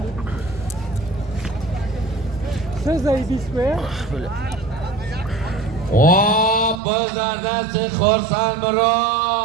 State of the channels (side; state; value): left; drops out; at 6.8 s